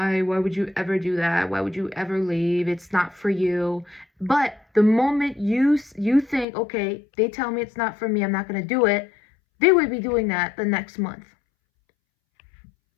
would you ever do that? Why would you ever leave? It's not for you. But The moment you think, okay, they tell me it's not for me, I'm not going to do it, they would be doing that the next month.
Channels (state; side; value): drops out; right; at 6.5 s